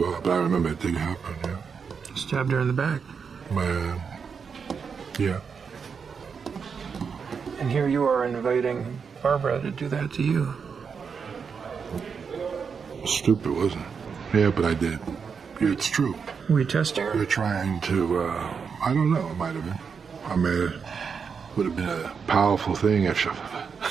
but I remember it did happen, yeah. Stabbed her in the back. Yeah. And here you are inviting Barbara to do that to you. Stupid, wasn't it? Yeah, but I did. Yeah, it's true. Were you testing her? We're trying to, I don't know, it might have been. I mean, it would have been a powerful thing if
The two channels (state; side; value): quieter; left; 6.0 dB